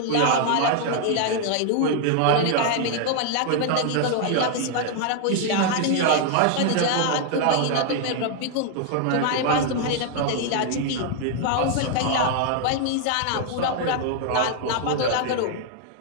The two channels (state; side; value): different; both; correlation 0.00